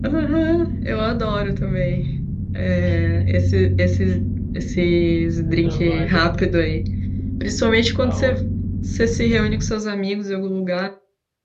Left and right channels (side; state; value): both; identical; correlation 1.00